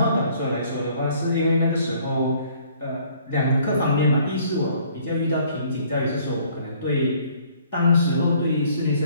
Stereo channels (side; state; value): both; inverted; correlation -0.59